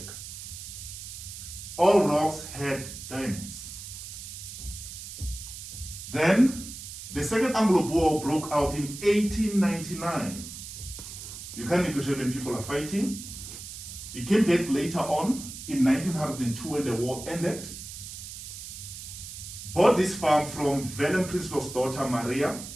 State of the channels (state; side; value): noise; right; hiss, 11 dB below the sound